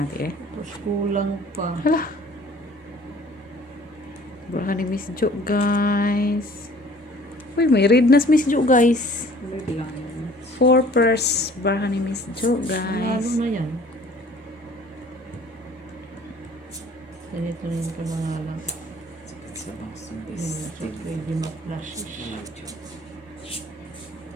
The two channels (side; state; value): both; normal; correlation 0.52